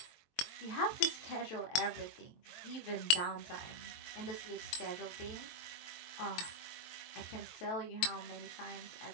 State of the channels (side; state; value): right; late; 22 ms